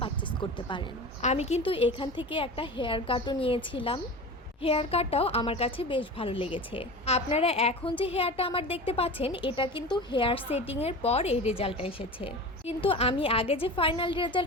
পারচেস করতে পারেন। আমি কিন্তু এখান থেকে একটা হেয়ার কাটও নিয়েছিলাম। হেয়ার কাটটাও আমার কাছে বেশ ভালো লেগেছে। আপনারা এখন যে হেয়ারটা আমার দেখতে পাচ্ছেন, এটা কিন্তু হেয়ার সেটিংয়ের পর এই রেজাল্টটা এসেছে। কিন্তু আমি আগে যে ফাইনাল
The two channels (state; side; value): normal; both; correlation 0.32